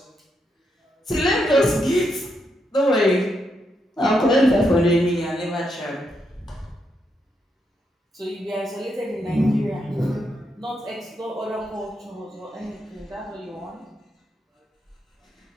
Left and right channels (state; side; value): normal; both; correlation 0.81